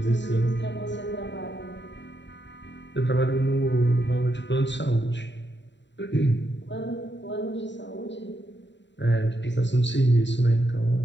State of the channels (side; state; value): right; late; 0.52 ms